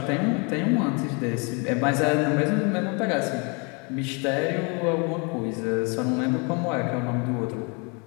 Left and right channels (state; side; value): quieter; right; 32.6 dB